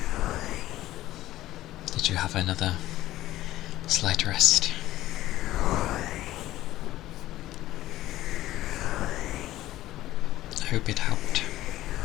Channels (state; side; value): quieter; right; 15.2 dB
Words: Did you have another slight rest? I hope it helped.